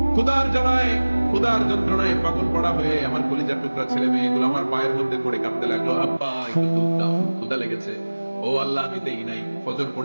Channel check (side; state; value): both; inverted; correlation -1.00